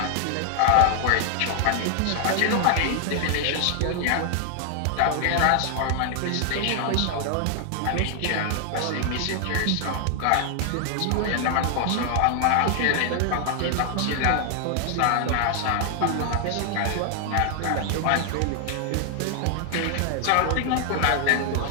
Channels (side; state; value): both; different; correlation 0.00